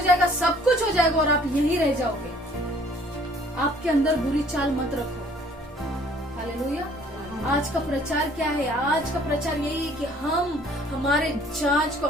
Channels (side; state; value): both; normal; correlation 0.57